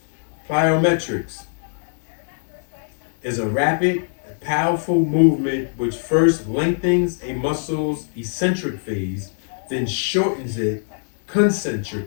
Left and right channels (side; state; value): right; silent; digital silence